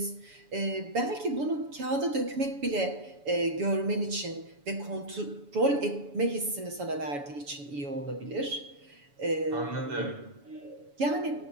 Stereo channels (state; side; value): late; left; 7.0 ms